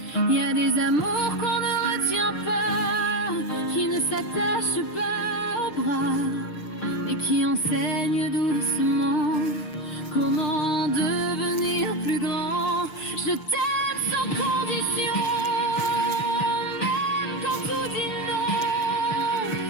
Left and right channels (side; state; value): right; late; 6.7 ms